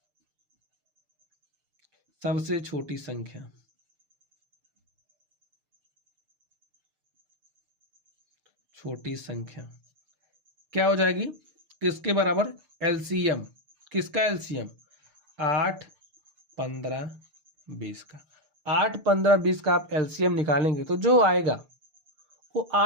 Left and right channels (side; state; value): left; late; 6.6 ms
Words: सबसे छोटी संख्या। छोटी संख्या क्या हो जाएगी, किसके बराबर, एलसीएम। किसका एलसीएम, 8, 15, 20 का। 8, 15, 20 का आप एलसीएम निकालेंगे तो जो आएगा वो